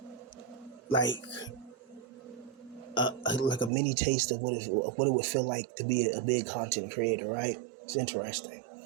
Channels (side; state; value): left; drops out; at 3.7 s